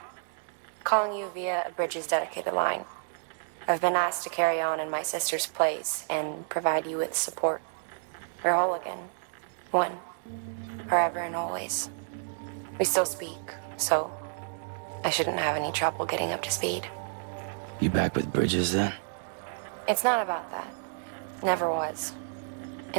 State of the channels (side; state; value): left; silent; 58 dB below the other